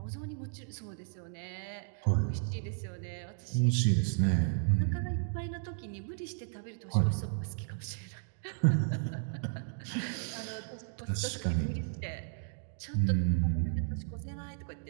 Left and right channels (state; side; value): silent; left; digital silence